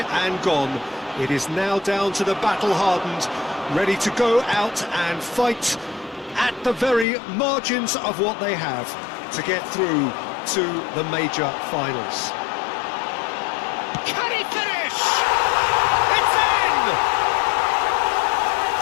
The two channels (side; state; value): right; drops out; at 7.1 s